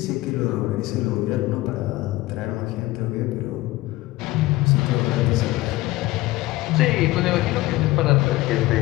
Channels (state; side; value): quieter; right; 18.6 dB